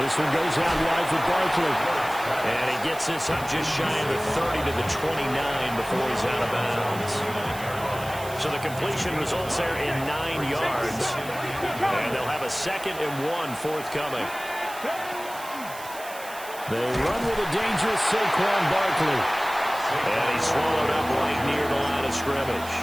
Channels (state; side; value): noise; right; hiss, 15 dB below the sound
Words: one goes out wide for Barkley. And he gets this up just shy of the 30 to the 29 before he's out of bounds. So the completion results there in 9 yards. And they'll have a 2nd and 1 forthcoming. They run with a dangerous Saquon Barkley. And he's swallowed up right near the line of scrimmage.